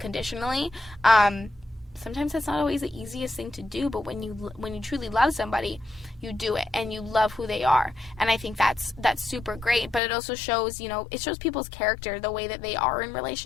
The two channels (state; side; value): drops out; right; at 10.0 s